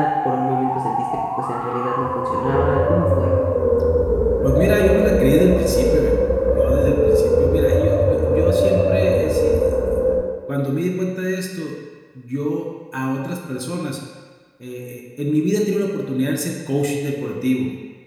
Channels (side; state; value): both; identical; correlation 1.00